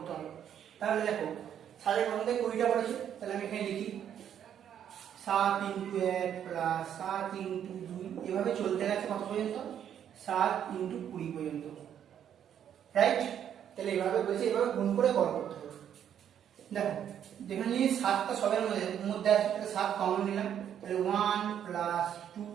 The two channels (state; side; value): quieter; left; 9.4 dB